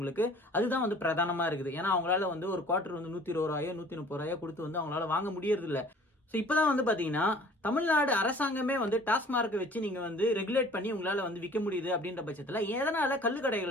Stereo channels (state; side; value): normal; both; correlation 0.50